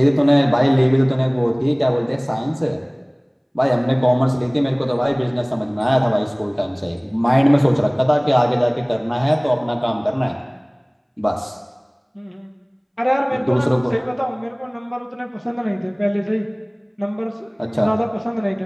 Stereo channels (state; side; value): identical; both; correlation 1.00